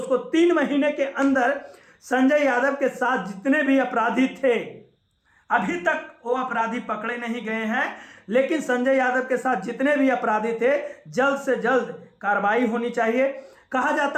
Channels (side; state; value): both; identical; correlation 1.00